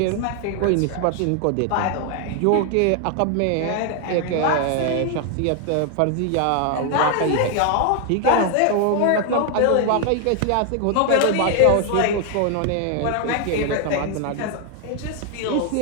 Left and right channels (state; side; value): different; both; correlation 0.00